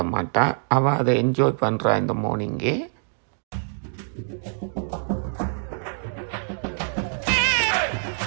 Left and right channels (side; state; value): left; silent; digital silence